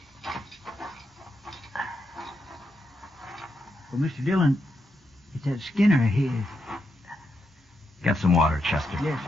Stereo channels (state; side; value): normal; both; correlation 0.83